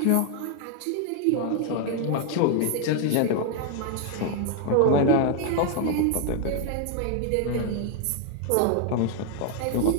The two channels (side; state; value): both; different; correlation 0.00